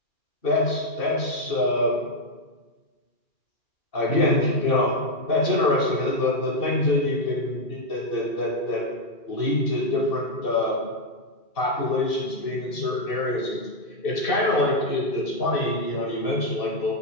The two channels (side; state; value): right; late; 2.6 ms